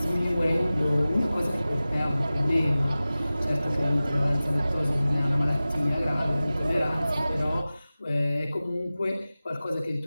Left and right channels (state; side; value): inverted; both; correlation -0.96